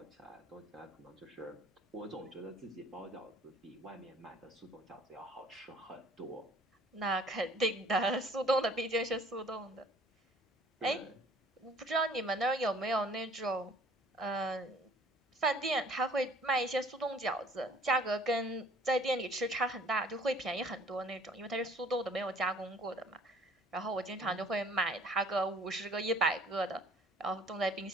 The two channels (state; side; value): normal; both; correlation 0.55